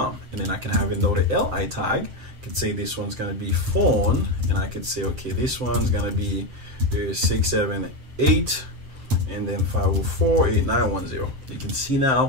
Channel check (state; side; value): late; left; 7.5 ms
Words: And then I can have another LI tag. I could say this one's gonna be phone. And I could say, okay, this one's gonna be 678 and then 504-8910. You can see